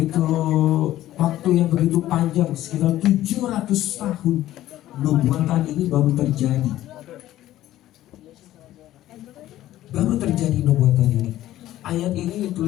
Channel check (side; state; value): right; quieter; 14.1 dB